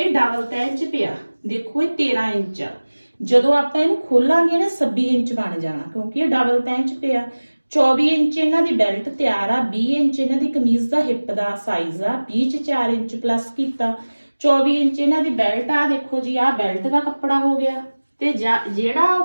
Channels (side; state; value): both; inverted; correlation -1.00